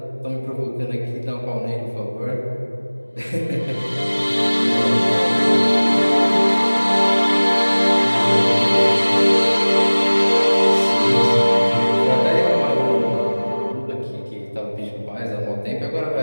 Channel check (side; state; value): both; inverted; correlation -1.00